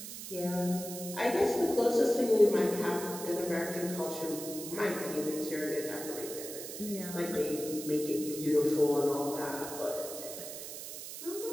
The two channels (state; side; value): noise; right; hiss, 9 dB below the sound